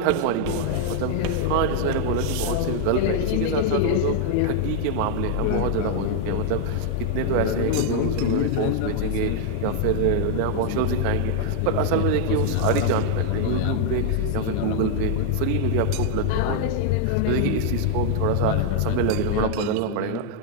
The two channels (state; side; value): different; both; correlation 0.00